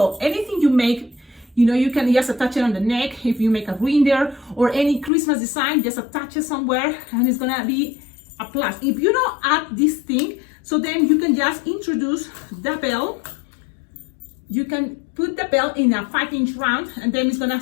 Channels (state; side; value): drops out; right; at 5.1 s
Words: Anything you make, you know, you can just attach it on the neck. If you make a reindeer or any Christmas design, just attach it somewhere, and it's gonna be a plus. If you don't add this thing, so then you can just introduce the bell. You can put the bell in a 5-inch round, and then it's gonna